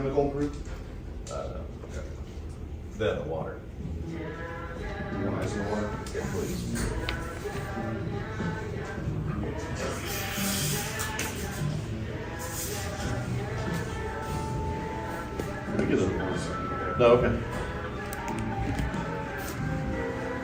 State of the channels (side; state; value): both; identical; correlation 1.00